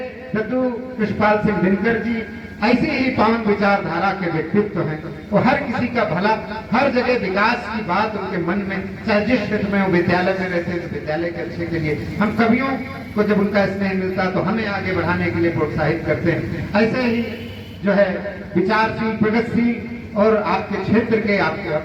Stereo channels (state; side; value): identical; both; correlation 1.00